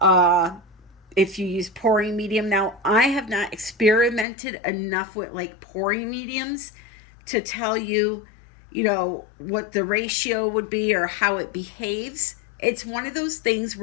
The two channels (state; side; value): drops out; right; at 4.2 s